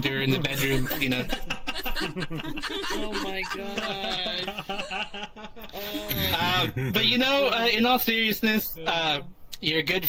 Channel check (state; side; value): identical; both; correlation 1.00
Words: in the bedroom, Oh my God. But in all seriousness, you're a good